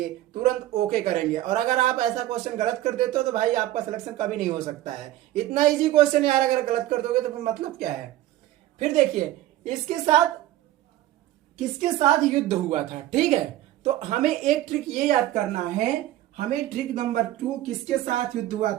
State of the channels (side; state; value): left; quieter; 14.5 dB